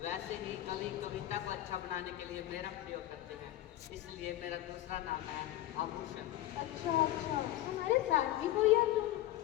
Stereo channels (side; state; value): right; quieter; 14.4 dB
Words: वैसे ही कवि कविता को अच्छा बनाने के लिए मेरा प्रयोग करते हैं। इसलिए मेरा दूसरा नाम है आभूषण। अच्छा अच्छा, तुम्हारे साथ भी कोई है तुम?